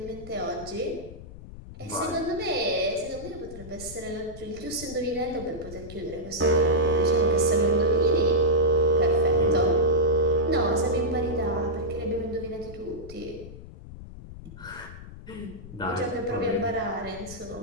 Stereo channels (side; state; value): left; noise; rumble, 15 dB below the sound